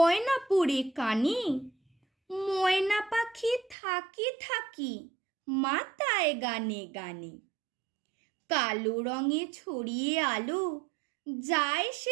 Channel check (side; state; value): left; drops out; at 3.8 s